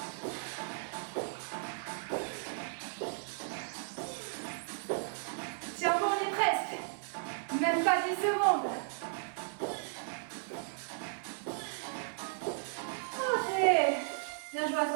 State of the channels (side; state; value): left; silent; digital silence